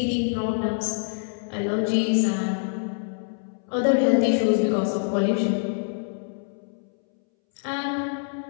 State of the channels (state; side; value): silent; right; 61 dB below the other